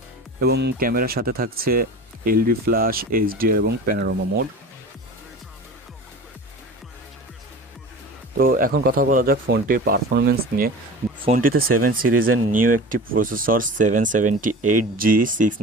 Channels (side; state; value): both; normal; correlation 0.35